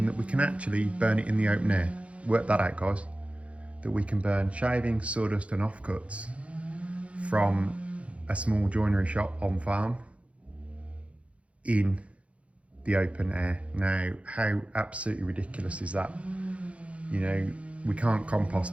that we can actually burn it in the open air. Work that out, guys. That we can burn shavings, sawdust and offcuts from a small joinery shop on farm in the open air. Now, how absolutely ridiculous is that? You know, we can't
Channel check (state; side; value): late; left; 0.063 ms